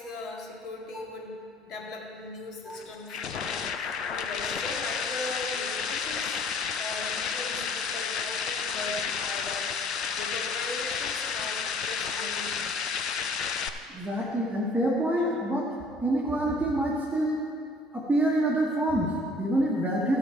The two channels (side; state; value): both; normal; correlation 0.55